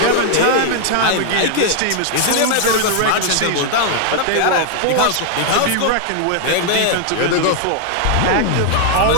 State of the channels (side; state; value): both; different; correlation 0.00